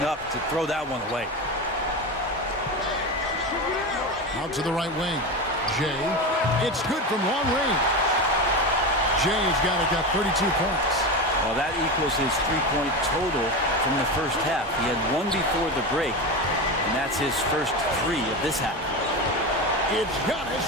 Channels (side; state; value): both; normal; correlation 0.21